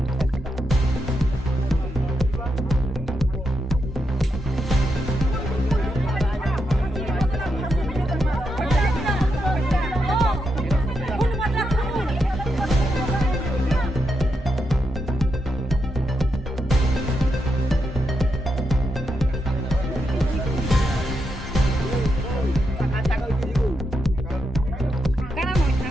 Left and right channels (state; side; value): normal; both; correlation 0.84